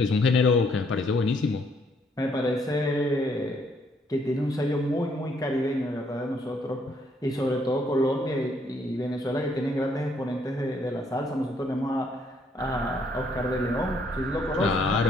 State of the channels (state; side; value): normal; both; correlation 0.69